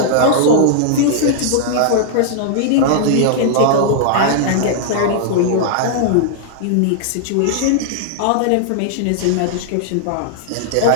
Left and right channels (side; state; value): both; different; correlation -0.01